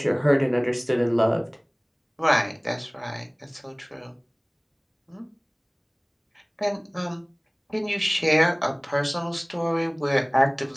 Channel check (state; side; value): identical; both; correlation 1.00